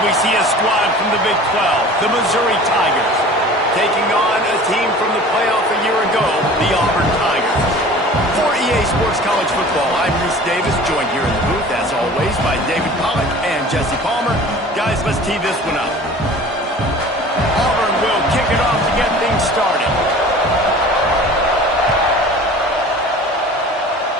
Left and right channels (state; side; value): normal; both; correlation 0.43